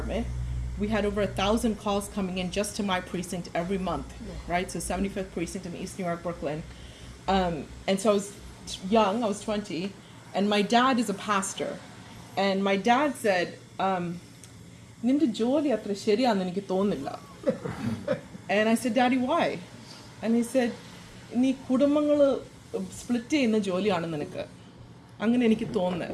We had over 1,000 calls coming in just to my precinct every month, right? So 75th precinct in East New York, Brooklyn. And so I was young, I was 20, and my dad is a pastor. And my dad said, "Ninde jolly atra ശരിയാണെന്ന് എനിക്ക് തോന്നുന്നില്ല." And I said, "Daddy, why?" And he said, "നീ കുടുംബങ്ങൾ split ചെയ്യുന്ന ജോലിയാണ് നിനക്ക്." അങ്ങനെ എനിക്ക് തോന്നുന്നത്.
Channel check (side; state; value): both; identical; correlation 1.00